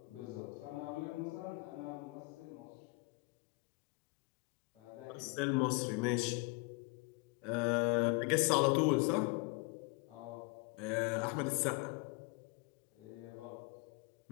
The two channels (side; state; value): right; quieter; 27.7 dB